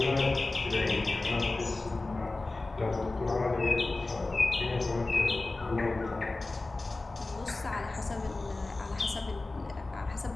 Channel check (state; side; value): quieter; right; 3.2 dB